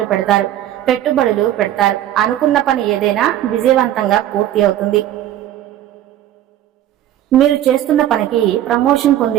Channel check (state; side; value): quieter; left; 12.3 dB